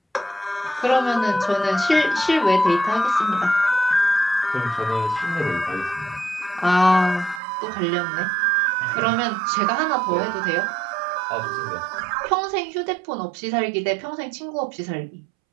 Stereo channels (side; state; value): left; drops out; at 7.4 s